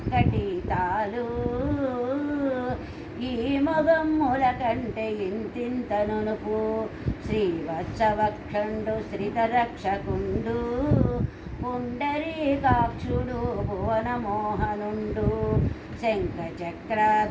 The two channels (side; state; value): both; identical; correlation 1.00